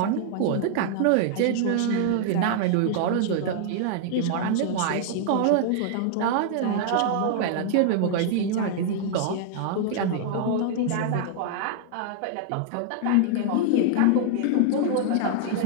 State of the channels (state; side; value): different; both; correlation -0.01